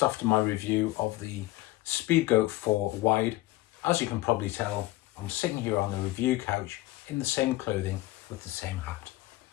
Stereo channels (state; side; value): quieter; right; 18.4 dB